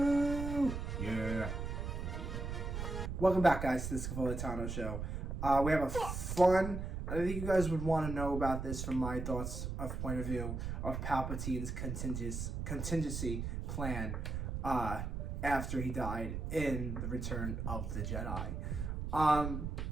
Yeah. Welcome back, guys, to the Scavolitano Show. We have a fun. I think you guys would want to know about this from my thoughts of point of view of Palpatine's contingency plan after he died in the Return of the Jedi.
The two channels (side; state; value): right; noise; rumble, 4 dB below the sound